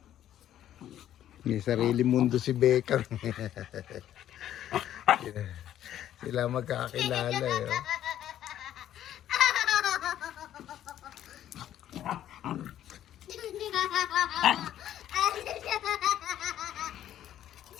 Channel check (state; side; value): quieter; right; 11.5 dB